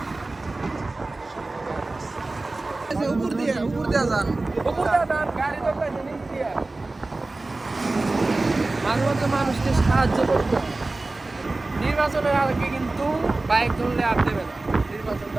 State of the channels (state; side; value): quieter; left; 3.2 dB